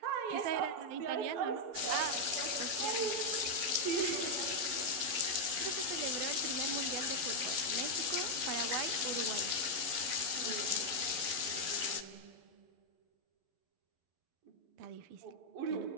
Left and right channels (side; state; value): left; late; 11 ms